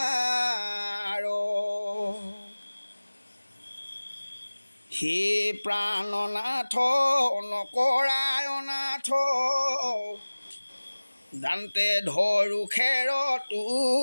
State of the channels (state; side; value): inverted; both; correlation -1.00